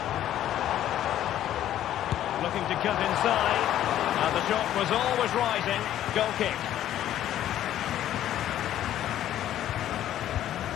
Looking to cut inside. And the shot was always rising. Goal kick.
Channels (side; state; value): right; quieter; 12.0 dB